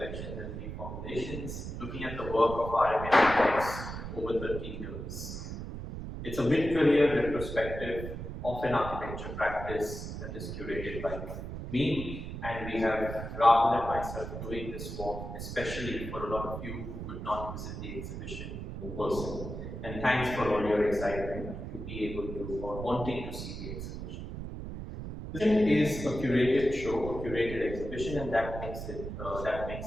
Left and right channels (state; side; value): noise; right; rumble, 7 dB below the sound